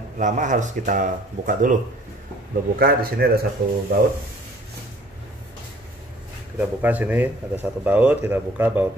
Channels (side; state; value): both; normal; correlation 0.55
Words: lama harus kita buka dulu. Udah buka, di sini ada satu baut. Kita buka sini ada satu baut, kita buka